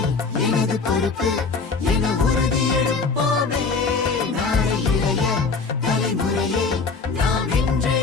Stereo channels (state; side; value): quieter; right; 4.5 dB